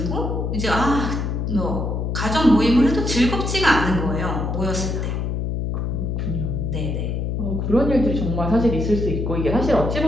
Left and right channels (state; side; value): noise; left; hum, 1 dB below the sound